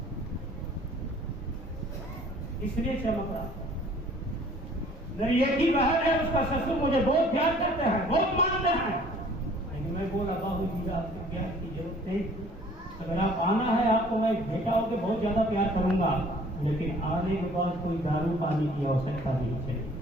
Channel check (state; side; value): normal; both; correlation 0.53